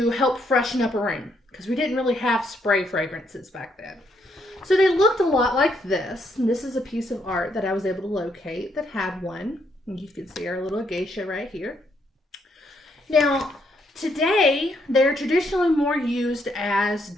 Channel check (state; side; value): normal; both; correlation 0.74